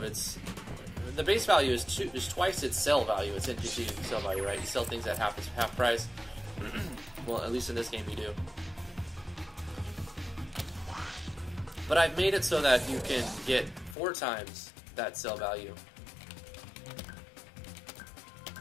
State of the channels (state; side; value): drops out; right; at 14.0 s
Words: its. The base value is twice its sell value, its NPC sell value, right? You sell things at half price. Well, at least in this game you do. But I've made it so that you can get 4 times that sell value